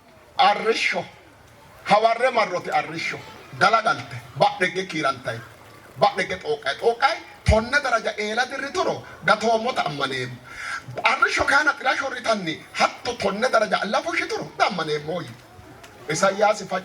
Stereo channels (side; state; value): both; identical; correlation 1.00